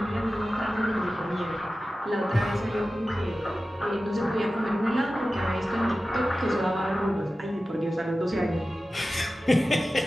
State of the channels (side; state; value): both; normal; correlation 0.95